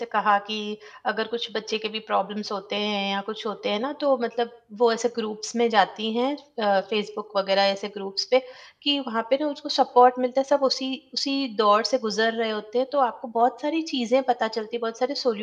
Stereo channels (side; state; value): both; identical; correlation 1.00